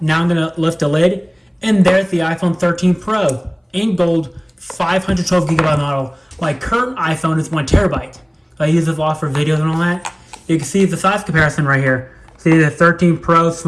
Now I'm going to lift the lid, and there's the iPhone 13 Pro in gold 512GB model. My current iPhone is 1TB. I use it a lot for videos and all that. You can see the size comparison right here. See the 13 Pro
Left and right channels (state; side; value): identical; both; correlation 1.00